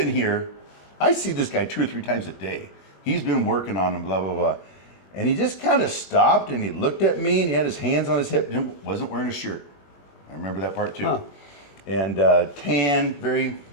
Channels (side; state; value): right; late; 21 ms